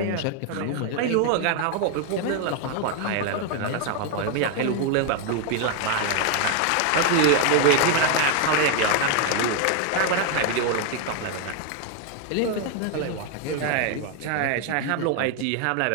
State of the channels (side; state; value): both; different; correlation 0.01